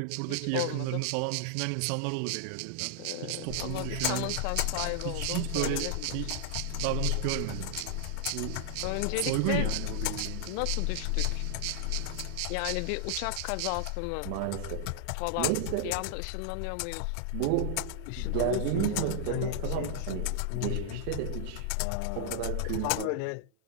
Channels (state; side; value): different; both; correlation -0.01